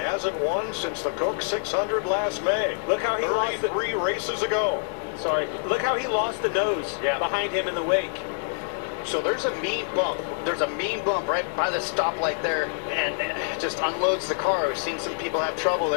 won since the Coke 600 last May. Look how he lost it. 3 races ago. Sorry. Look how he lost the nose behind him in the wake. So there's a mean bump. There's a mean bump right by the stoplight there, and it just unloads the car. We've seen some people have trouble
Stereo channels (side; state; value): right; silent; digital silence